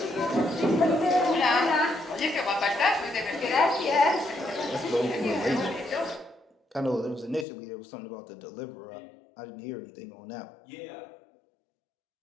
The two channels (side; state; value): right; drops out; at 7.5 s